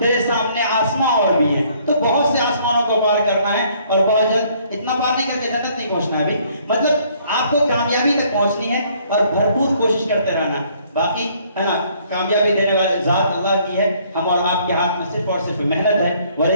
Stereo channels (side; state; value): both; inverted; correlation -0.63